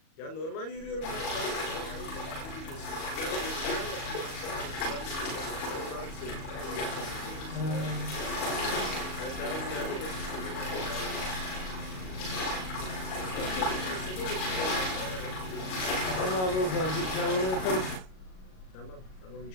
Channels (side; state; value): right; late; 38 ms